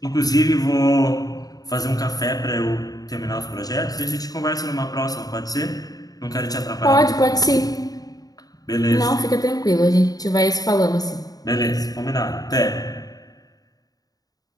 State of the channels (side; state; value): right; late; 0.18 ms